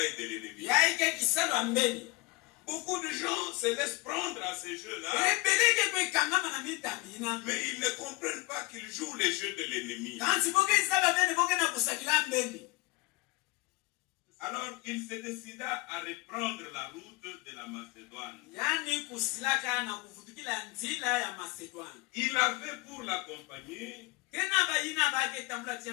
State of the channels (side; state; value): right; quieter; 23.7 dB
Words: de l'ennemi. Beaucoup de gens se laissent prendre à ces jeux-là. Mais ils ne comprennent pas qu'ils jouent les jeux de l'ennemi. Alors il se décida à reprendre la route de la Macédoine. Il avait pour l'accompagner